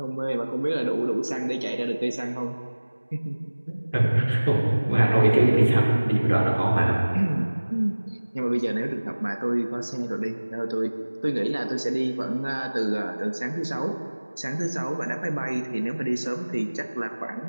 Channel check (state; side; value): inverted; both; correlation -1.00